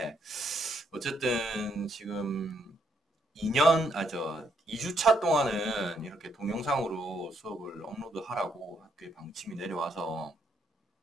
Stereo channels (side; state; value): both; normal; correlation 0.74